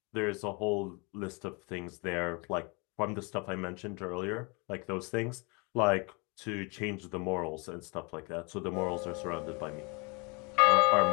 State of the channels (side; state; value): right; quieter; 30.4 dB